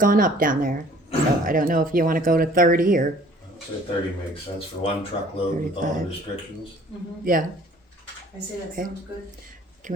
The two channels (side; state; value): both; normal; correlation 0.53